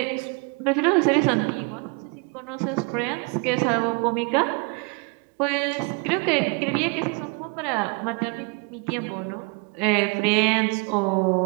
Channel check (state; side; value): quieter; left; 31.2 dB